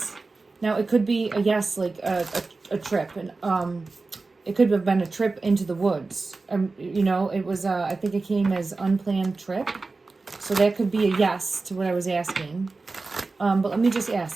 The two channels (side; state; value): left; quieter; 3.7 dB